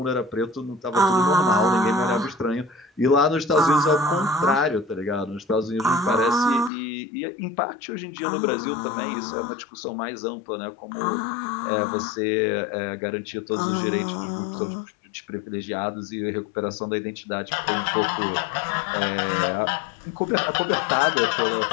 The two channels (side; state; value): right; drops out; at 6.7 s